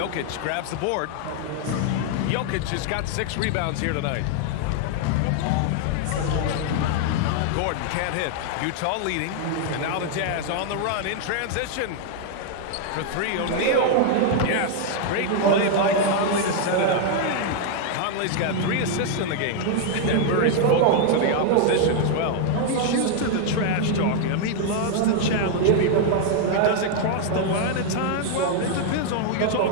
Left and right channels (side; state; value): both; different; correlation 0.00